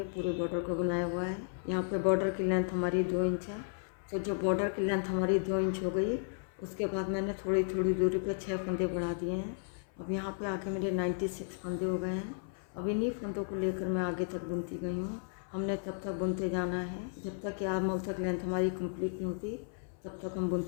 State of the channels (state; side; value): silent; right; 55 dB below the other